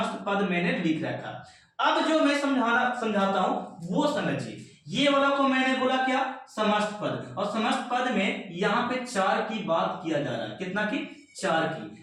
पद मैंने लिख रखा। अब जो मैं समझाता हूं वो समझिए। ये वाला को मैंने बोला क्या? समस्त पद। और समस्त पद में यहाँ पे 4 की बात किया जा रहा है। कितना की? 4 की।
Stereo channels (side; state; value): both; identical; correlation 1.00